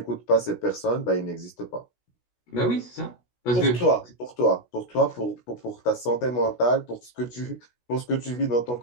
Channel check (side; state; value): right; late; 16 ms